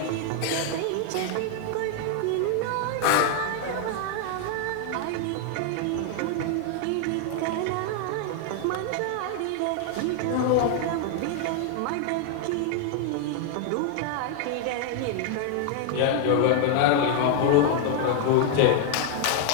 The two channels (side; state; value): both; different; correlation 0.00